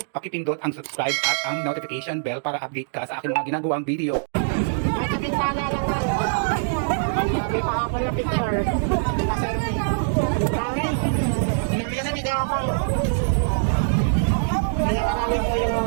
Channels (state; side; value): silent; left; digital silence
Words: pakipindot ang subscribe at ang notification bell para update ka sa aking mga ginagawang video. May kapintana lang lang. May pakapal na picture. Naka-selfie. Dami. Binibigyan na video ako. Kaya marami po yung